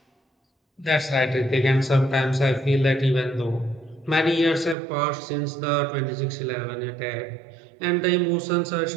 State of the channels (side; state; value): left; drops out; at 4.8 s